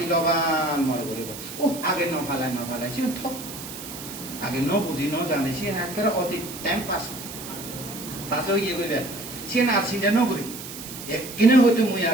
মনে করিব ও আগে নফালাই সে ঠক আগে ন বুঝি ন জানে সে একেবারে অতি টাইম পাস ইয়ে করবে সে না চিন্তা ন করি একদিনে হয়তো মুই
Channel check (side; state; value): right; noise; hiss, 11 dB below the sound